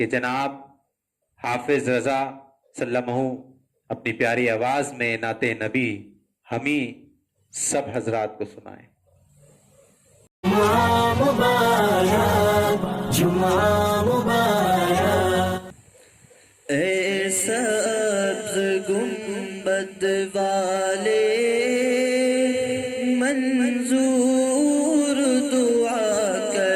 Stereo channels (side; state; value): both; identical; correlation 1.00